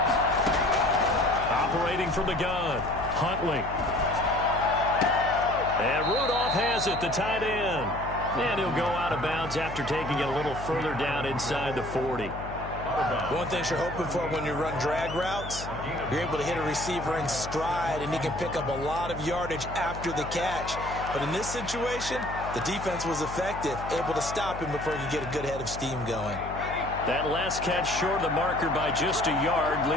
Operating from the gun, Huntley. And Rudolph has it, the tight end. And he'll go out of bounds after taking it a little further down inside the 40. One thing you're hoping for when you run drag routes, you're able to hit a receiver in stride, and he can pick up a lot of yardage after the catch. But in this situation, the defense was effective, able to stop him before he could get a good head of steam going. That last catch short of the marker by just a yard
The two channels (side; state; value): left; noise; hum, 10 dB below the sound